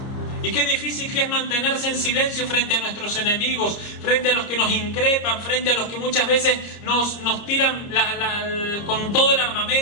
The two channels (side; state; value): right; late; 30 ms